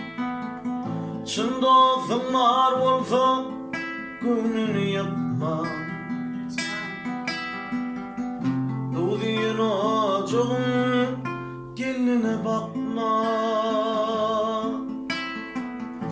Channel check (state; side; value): identical; both; correlation 1.00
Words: Çın dostum var olsa gönlünü yapma Doğduğun ocağın geline bakma